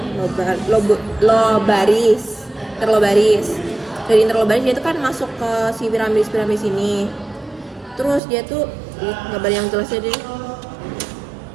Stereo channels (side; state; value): left; drops out; at 8.2 s